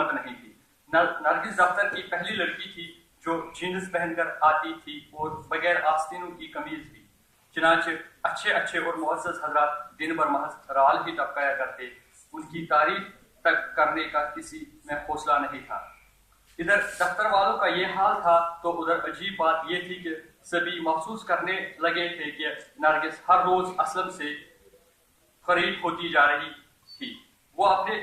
नहीं थी। नरगिस दफ्तर की पहली लड़की थी जो जीन्स पहनकर आती थी और बगैर आस्तीनों की कमीज भी। चुनांचे अच्छे और मुअज़्ज़ज़ हज़रात दिन भर महज राल ही टपकाया करते। उनकी तारीफ तक करने का किसी में हौसला नहीं था। इधर दफ्तर वालों का ये हाल था तो उधर अजीब बात ये थी कि सभी महसूस करने लगे थे कि नरगिस हर रोज असलम से करीब होती जा रही थी। वो अपने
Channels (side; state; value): both; identical; correlation 1.00